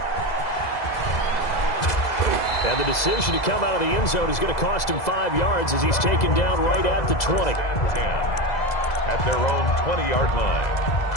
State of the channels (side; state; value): right; late; 2.0 ms